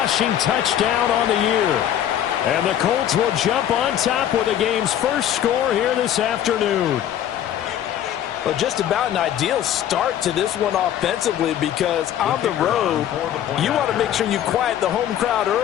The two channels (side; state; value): right; quieter; 10.8 dB